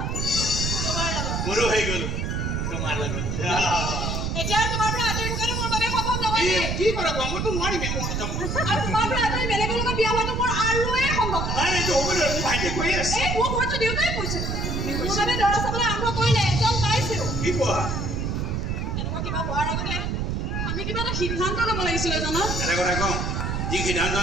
তোমাৰ লগত মোৰো হৈ গ'ল তোমাৰ লগত এতিয়া তোমাৰ পৰা আঁতৰি থকাটো মোৰ বাবে সম্ভৱ নহয় কি কৰা মইতো নোৱাৰিম মই যাম আৰু তোমাৰ পৰা আঁতৰি বেলেগৰ লগত বিয়া হোৱাটো মোৰ আৰুৱে সম্ভৱ নাই এইটো হ'ব নহয় মোৰ ভাইটিয়ে কৈ আছে এই মোৰ ঘৰতো দেউতাই কৈছে মোৰ বাবে দৰা চাবলৈ আৰম্ভ কৰিলে এজন পাইছেও কি কোৱা এনেকুৱা কিবা হোৱাৰ আগতে আমি কিবা এটা সিদ্ধান্ত ল'ব লাগিছিলে জানা এটা কথা কওঁ যি সিদ্ধান্ত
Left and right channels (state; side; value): noise; right; rumble, 1 dB below the sound